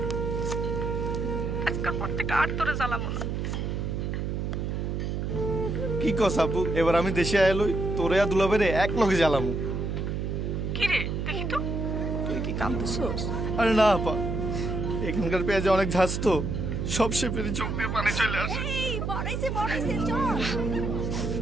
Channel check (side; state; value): right; noise; hum, 2 dB below the sound